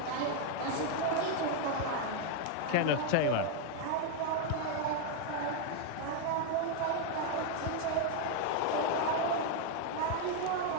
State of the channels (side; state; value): both; different; correlation 0.01